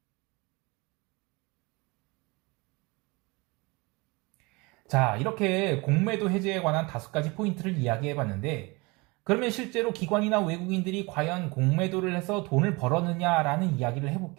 자, 이렇게 공매도 해제에 관한 5가지 포인트를 이야기해봤는데 그러면 실제로 기관이나 외국인들이 과연 공매도를 해서 돈을 벌었느냐라는 이야기를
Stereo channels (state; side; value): quieter; left; 25.8 dB